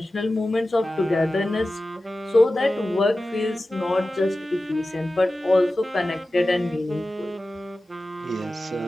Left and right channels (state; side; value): normal; both; correlation 0.95